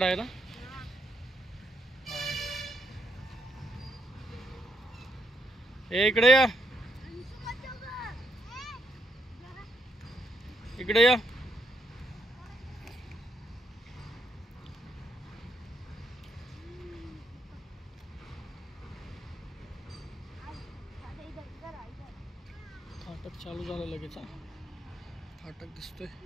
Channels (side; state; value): both; normal; correlation 0.76